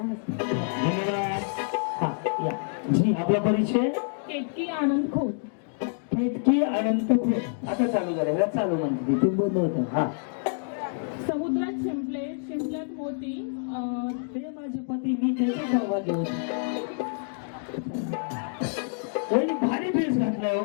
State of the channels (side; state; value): right; silent; digital silence